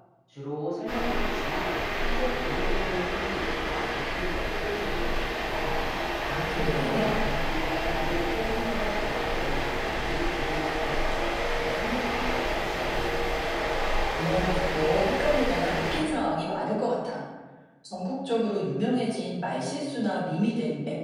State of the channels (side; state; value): both; identical; correlation 1.00